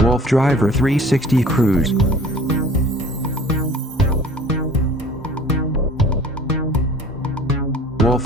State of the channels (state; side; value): normal; both; correlation 0.47